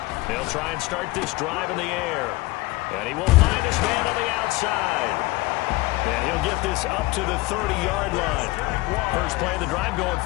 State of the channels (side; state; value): right; quieter; 21.1 dB